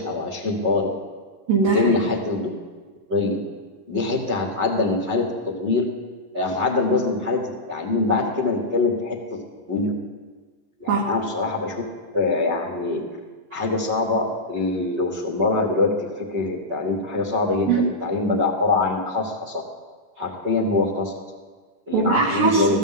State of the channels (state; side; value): late; left; 11 ms